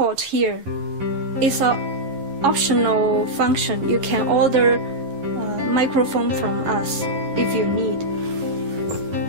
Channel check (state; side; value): late; left; 11 ms